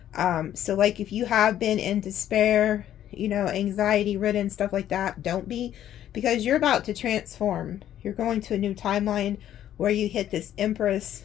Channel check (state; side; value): quieter; right; 11.4 dB